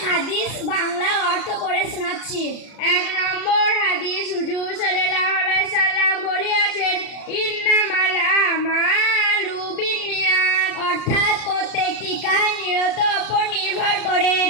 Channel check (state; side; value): late; right; 33 ms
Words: হাদিস বাংলা অর্থ পড়ে শোনাচ্ছি। 1 নম্বর হাদিস, হুজুর সাল্লাল্লাহু আলাইহি সাল্লাম বলেছেন, ইন্নামাল আমালু বিন্নিয়াত, অর্থাৎ প্রত্যেকটি কাজ নিয়ত উপর নির্ভর করে।